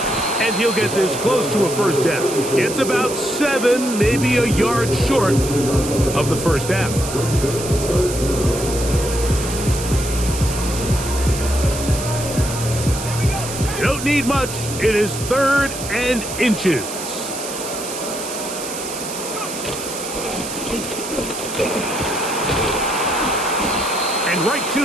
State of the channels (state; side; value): noise; right; hiss, 8 dB below the sound